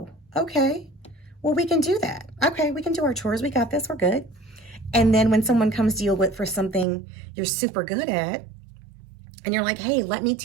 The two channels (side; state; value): left; drops out; at 6.9 s